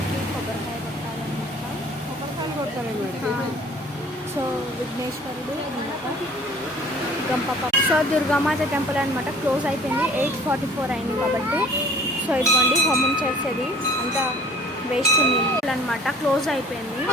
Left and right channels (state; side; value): normal; both; correlation 0.49